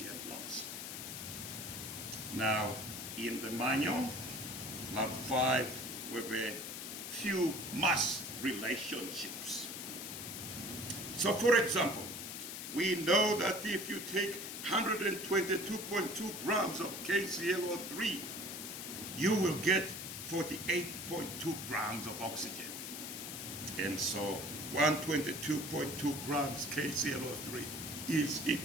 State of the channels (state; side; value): noise; left; hiss, 7 dB below the sound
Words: lost. Now, in the manual, lab 5, with a few mass relationships. So, for example, we know that if you take 122.2 grams of KClO3, you will get 48.2 grams of oxygen. And so 122.2 grams KClO3 is